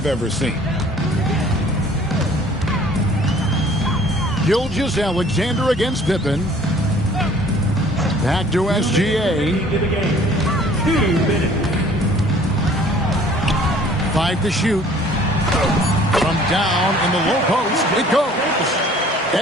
ever seen. Gilgeous-Alexander against Pippen. Back to SGA. 2 minutes. 5 to shoot. From down in the low post, it goes.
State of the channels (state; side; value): normal; both; correlation 0.53